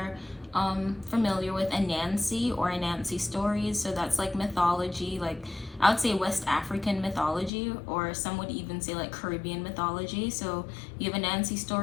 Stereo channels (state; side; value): drops out; right; at 7.5 s